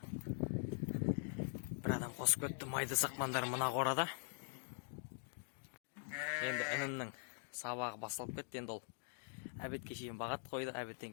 Бір адам қосып кетті. Майды сақпандар мына қорада. Енді інімнің сабағы басталып кетті. Енді ол әбетке шейін бағат қойды.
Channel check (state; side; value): silent; right; digital silence